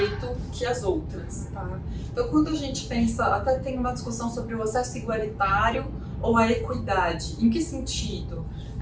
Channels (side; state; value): both; identical; correlation 1.00